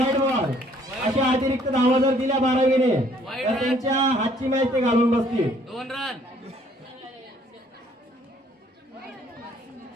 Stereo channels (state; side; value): normal; both; correlation 0.62